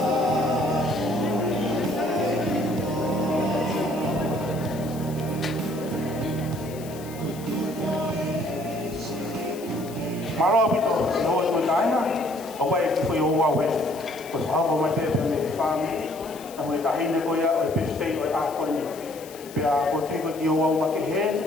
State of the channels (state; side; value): noise; left; hiss, 18 dB below the sound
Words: Malo bito, no mataina, away for your way. But how my family, and with the Hina Goya, a bit stay with Aquani. We are going to go what you head,